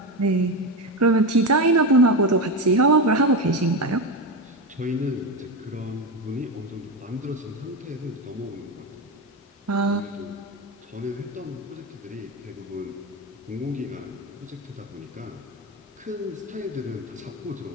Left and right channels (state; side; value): normal; both; correlation 0.15